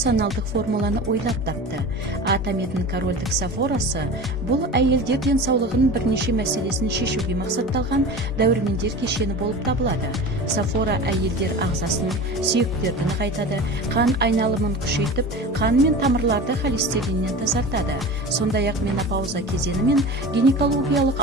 формуланы ойлап тапты. Атометтің корольдік сафорасы бұл әйелдер денсаулығының бірнеше мәселесін шешуге мақсатталған дәрумендер кешені болып табылады. Сафора әйелдер ағзасын, сүйектерді нығайтады, қан айналымын күшейтіп, қан мен тамырларды холестериннен тазартады. Сондай-ақ менопауза кезеңі мен гинекологиялық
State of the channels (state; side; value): normal; both; correlation 0.33